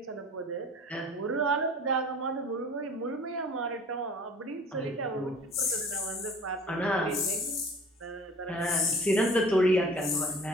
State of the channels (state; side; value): normal; both; correlation 0.46